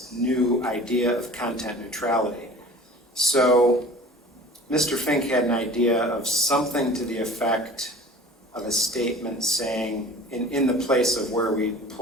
new idea of content neutrality. So Mr. Fink had an idea of something to the effect of a statement saying, in the place of where we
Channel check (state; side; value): normal; both; correlation 0.42